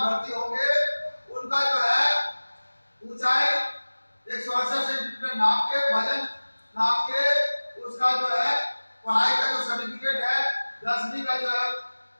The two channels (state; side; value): inverted; both; correlation -1.00